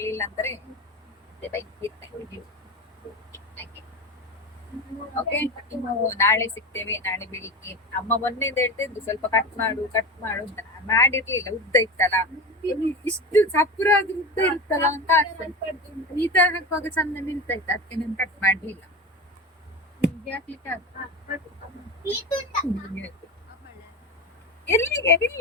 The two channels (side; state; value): both; normal; correlation 0.25